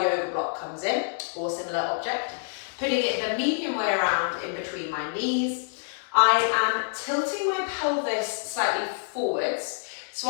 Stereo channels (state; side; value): silent; right; digital silence